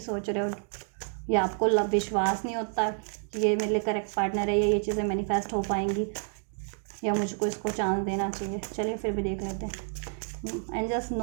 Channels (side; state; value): left; silent; 58 dB below the other